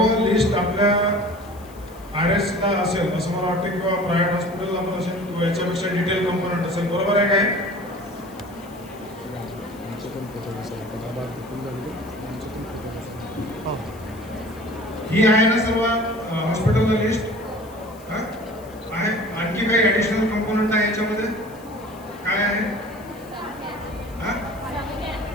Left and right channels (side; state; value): left; noise; hiss, 24 dB below the sound